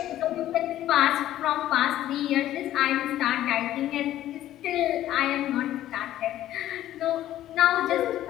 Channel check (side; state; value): right; quieter; 13.1 dB